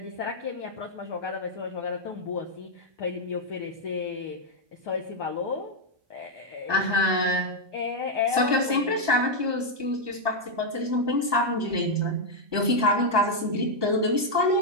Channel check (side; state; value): left; late; 1.2 ms